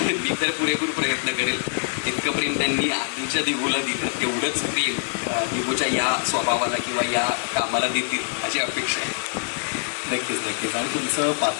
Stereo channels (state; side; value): silent; right; digital silence